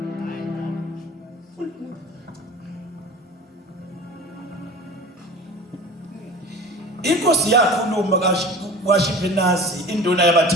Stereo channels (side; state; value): both; normal; correlation 0.38